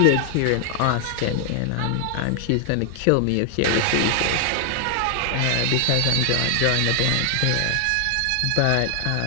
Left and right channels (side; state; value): both; different; correlation 0.00